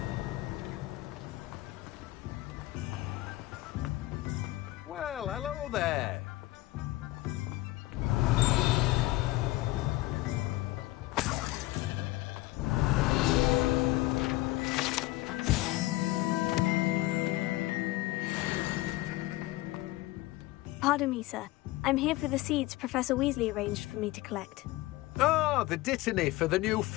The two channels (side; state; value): right; quieter; 18.4 dB